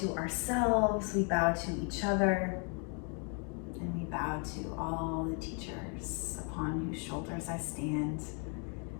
to ourselves, we bow to each other, and we bow to all the teachers upon whose shoulders I stand.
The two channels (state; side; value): quieter; right; 38.5 dB